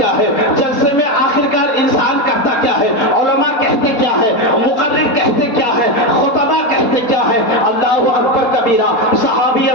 ہے؟ جلسے میں آخرکار انسان کرتا کیا ہے؟ علماء کہتے کیا ہے؟ مقرر کہتے کیا ہے؟ خطبہ کہتے کیا ہے؟ اللہ اکبر کبیرہ. صحابی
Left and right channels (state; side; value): late; right; 4.2 ms